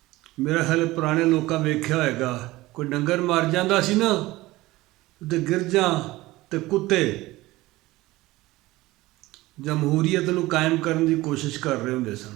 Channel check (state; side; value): quieter; left; 18.8 dB